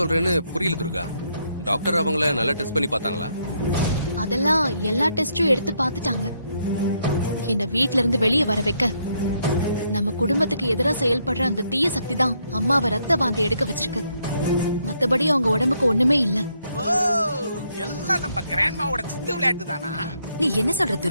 புரியல துர்கா. டாக்டர் அவங்கள நல்லா டெஸ்ட் பண்ணி பார்த்தாங்களா? அதெல்லாம் எல்லா டெஸ்டும் எடுத்து பார்த்துட்டாங்க. என்ன வீட்ல இருந்து வெளியே வர வைக்க நம்ம குடும்பத்துக்கு எதிரா செயல்படுற அந்த தீய சக்தி தான் அம்மாவை ரத்த வாந்தி எடுக்க வச்சிருக்கு. மத்தபடி அவங்க உடம்புக்கு ஒண்ணுமே இல்ல. ஓ, எல்லாம் நம்ம கிராண்ட்மாவோட சித்து விளையாட்டு தானா? நீ என்ன சொல்ற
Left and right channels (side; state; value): both; inverted; correlation -0.74